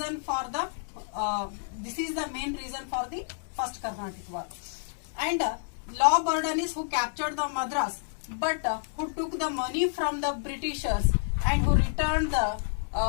for the this is the main reason for the first Carnatic War. And law Bourdonnais, who captured the Madras, but who took the money from the Britishers and who returned the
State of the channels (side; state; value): right; silent; digital silence